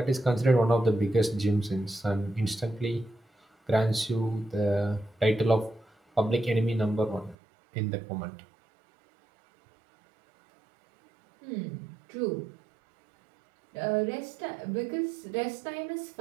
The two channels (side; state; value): left; drops out; at 7.4 s